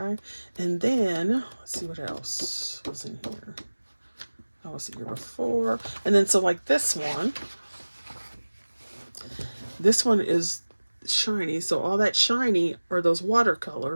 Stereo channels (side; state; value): both; inverted; correlation -1.00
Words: And then let's see what else was in here. I was here before. And then so like this one is shiny. So all that shiny are those